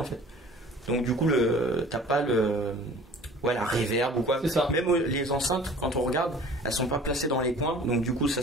fait, donc du coup t'as pas la reverb ou quoi. C'est ça. Même les enceintes, quand on regarde, elles sont pas placées dans les coins, donc du coup ça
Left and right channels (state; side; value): normal; both; correlation 0.47